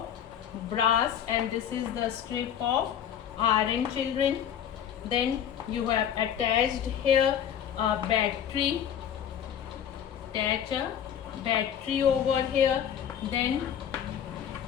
brass and this is the strip of iron, children. Then you have attached here a battery. Attach a battery over here. Then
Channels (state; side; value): quieter; right; 9.1 dB